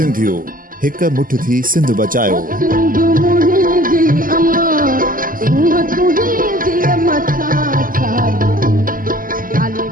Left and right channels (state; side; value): late; left; 0.41 ms